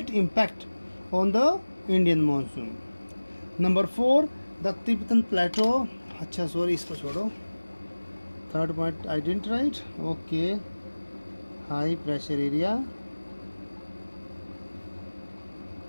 impact on the Indian monsoon. Number 4, the Tibetan Plateau. अच्छा sorry, इसको छोड़ो. Third point I didn't write. Okay, high pressure area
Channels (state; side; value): inverted; both; correlation -1.00